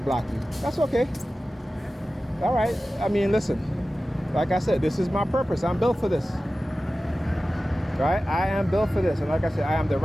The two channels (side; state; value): both; normal; correlation 0.95